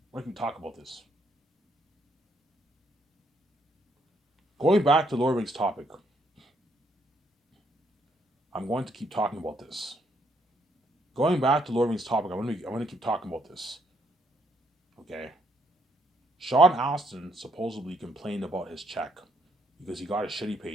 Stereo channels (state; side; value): normal; both; correlation 0.72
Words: going to talk about this. Going back to Lord of the Rings topic, I'm going to keep talking about this. Going back to Lord of the Rings topic, I'm going to keep talking about this. Okay? Sean Astin supposedly complained about his check because he got a shitty